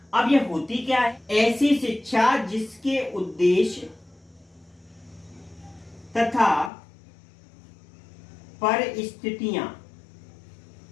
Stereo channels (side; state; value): right; drops out; at 6.7 s